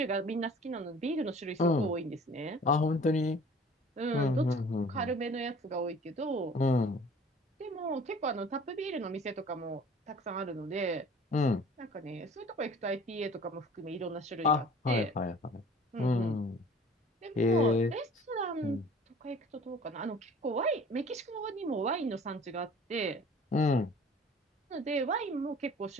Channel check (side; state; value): both; normal; correlation 0.48